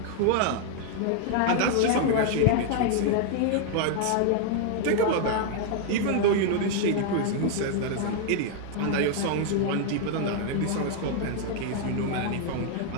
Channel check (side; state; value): both; different; correlation 0.00